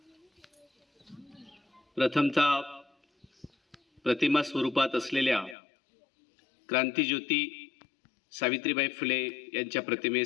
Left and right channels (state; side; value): drops out; right; at 5.6 s